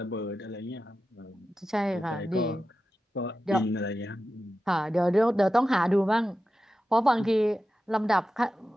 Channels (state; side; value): normal; both; correlation 0.92